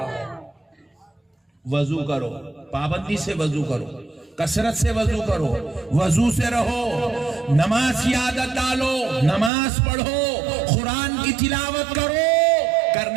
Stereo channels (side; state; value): left; drops out; at 9.5 s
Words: وضو کرو، پابندی سے وضو کرو، کثرت سے وضو کرو، وضو سے رہو، نماز کی عادت ڈالو، نماز پڑھو، قرآن کی تلاوت کرو،